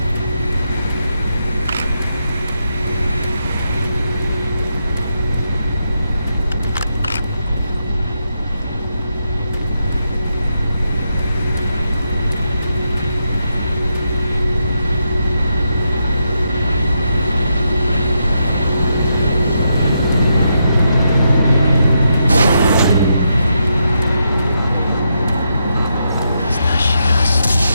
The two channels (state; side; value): inverted; both; correlation -0.83